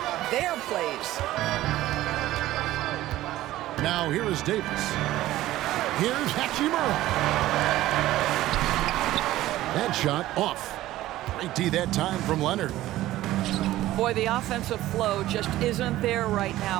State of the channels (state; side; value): quieter; left; 15.4 dB